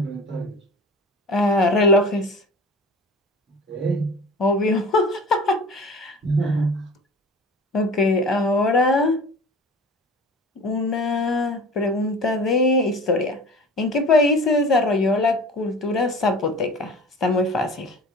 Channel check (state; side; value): normal; both; correlation 0.39